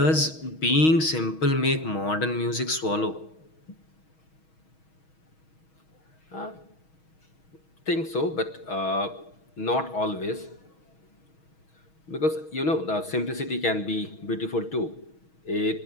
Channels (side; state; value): right; late; 6.3 ms